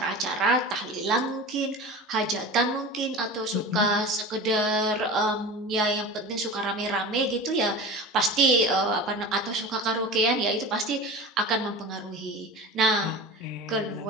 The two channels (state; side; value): normal; both; correlation 0.33